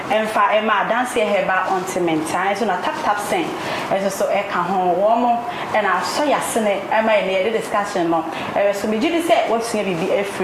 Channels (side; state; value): both; identical; correlation 1.00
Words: emfa ema dance heba ontiment an so na tap sen so e ka ho wo mo e na so ya sene ema ene de discussion no so me gidi se wo sua bibi